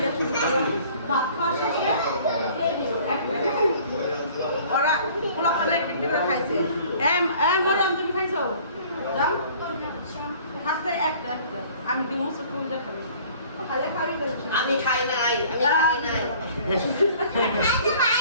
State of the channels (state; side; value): inverted; both; correlation -0.51